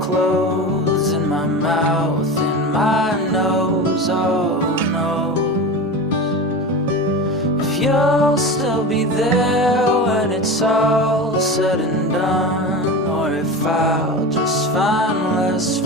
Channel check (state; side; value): normal; both; correlation 0.28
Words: in my mouth, in my nose. Oh no, if you'll still be there when it's all said and done, or if I'll just find less